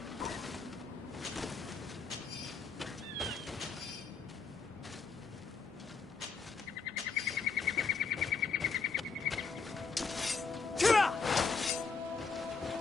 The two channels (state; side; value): quieter; right; 4.8 dB